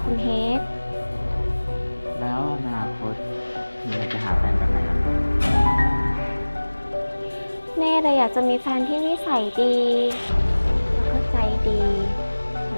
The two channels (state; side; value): inverted; both; correlation -1.00